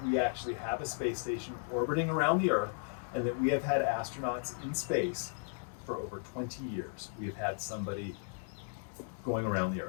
we actually have a space station orbiting around the Earth, and that we have had astronauts in space for over 20 years. We have had somebody going around the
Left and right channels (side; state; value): right; silent; 54 dB below the other